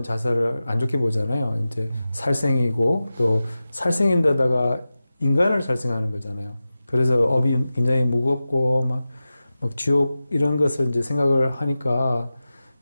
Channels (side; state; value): both; inverted; correlation -0.94